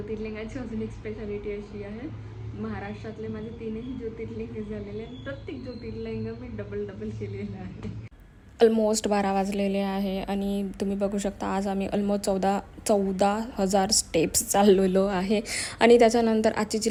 अजून एक स्पेशालिटी अशी आहे, महाराष्ट्रातले माझे 3ही ज्योतिर्लिंग झालेले आहेत. प्रत्येक ज्योतिर्लिंग मी डबल केलेलं आहे. ऑलमोस्ट 12 वाजलेले आहे आणि तुम्ही बघू शकता आज आम्ही ऑलमोस्ट 14,000 स्टेप्स चाललेलो आहे. आणि त्याच्यानंतर आजची जी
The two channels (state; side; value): identical; both; correlation 1.00